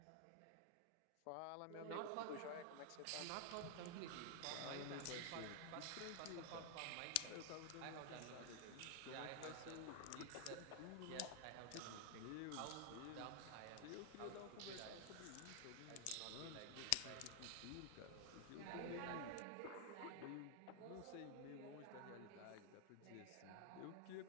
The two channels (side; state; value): both; different; correlation 0.00